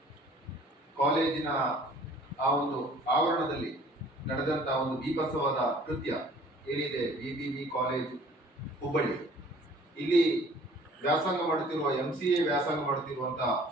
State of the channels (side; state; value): both; normal; correlation 0.53